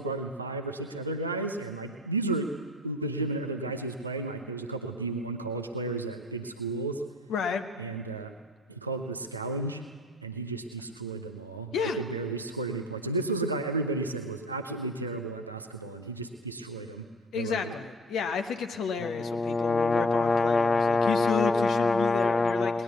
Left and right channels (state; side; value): normal; both; correlation 0.50